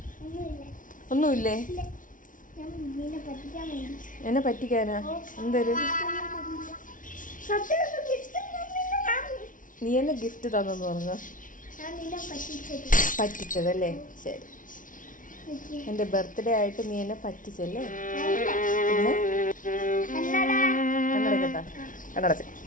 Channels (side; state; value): right; late; 0.38 ms